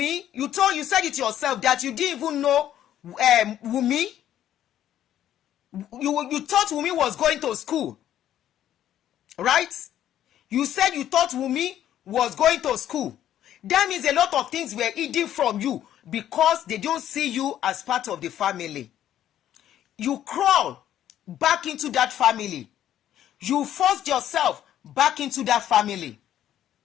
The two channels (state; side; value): quieter; right; 11.4 dB